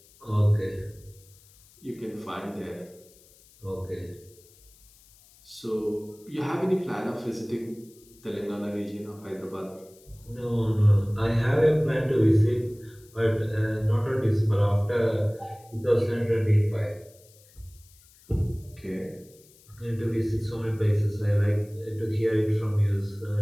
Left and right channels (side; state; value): left; noise; hiss, 27 dB below the sound